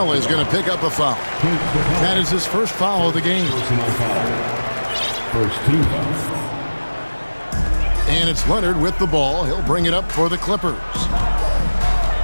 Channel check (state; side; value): inverted; both; correlation -1.00